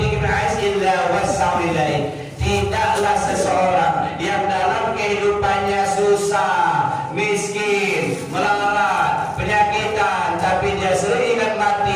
dikna'is illa wassa'u ilaih. Tidaklah seseorang yang dalam kehidupannya susah, miskin, melarat, penyakitan, tapi dia sering ingat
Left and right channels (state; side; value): identical; both; correlation 1.00